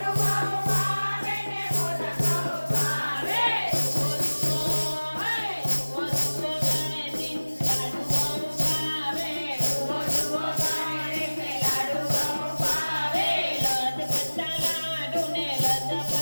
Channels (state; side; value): inverted; both; correlation -1.00